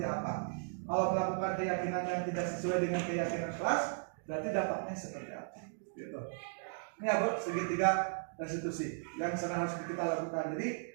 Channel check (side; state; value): left; silent; digital silence